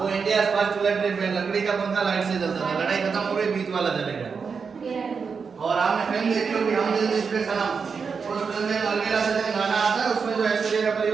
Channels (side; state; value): left; quieter; 5.6 dB